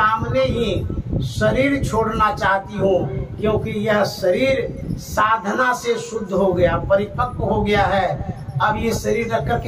ही शरीर छोड़ना चाहती हूँ, क्योंकि यह शरीर साधना से शुद्ध हो गया, परिपक्व हो गया है। अब ये शरीर रख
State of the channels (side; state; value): both; identical; correlation 1.00